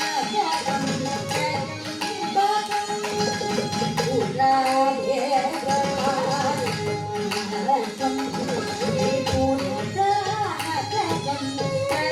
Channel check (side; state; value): both; identical; correlation 1.00